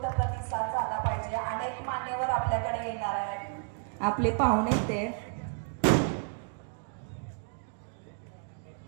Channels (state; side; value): silent; left; 57 dB below the other